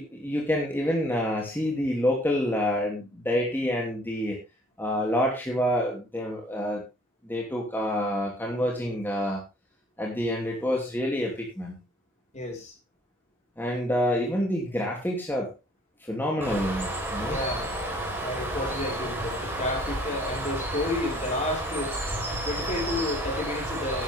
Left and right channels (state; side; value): normal; both; correlation 0.57